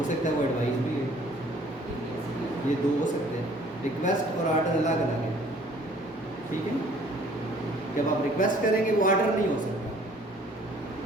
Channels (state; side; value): normal; both; correlation 0.56